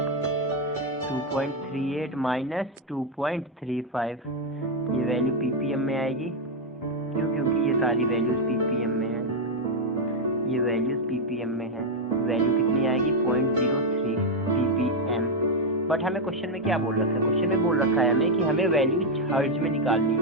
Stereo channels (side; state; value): both; normal; correlation 0.02